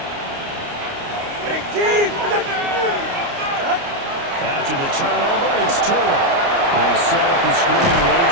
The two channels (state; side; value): late; left; 29 ms